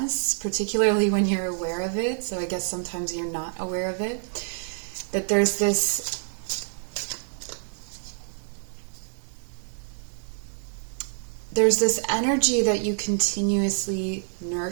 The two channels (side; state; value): left; silent; digital silence